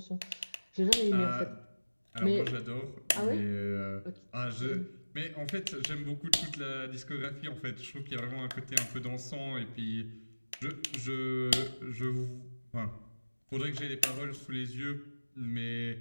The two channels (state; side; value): inverted; both; correlation -1.00